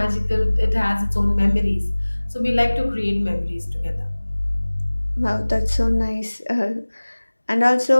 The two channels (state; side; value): inverted; both; correlation -1.00